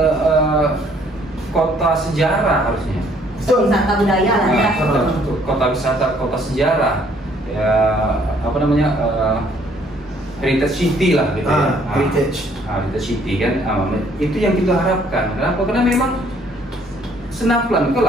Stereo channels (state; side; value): normal; both; correlation 0.63